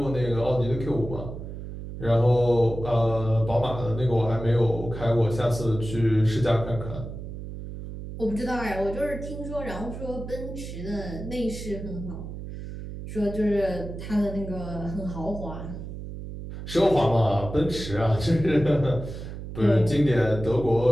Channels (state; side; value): noise; right; hum, 9 dB below the sound